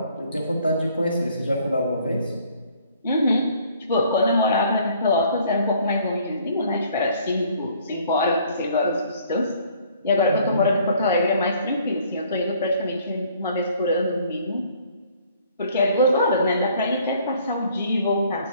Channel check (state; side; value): inverted; both; correlation -0.59